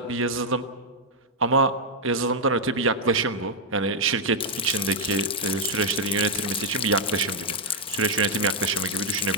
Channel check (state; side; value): normal; both; correlation -0.02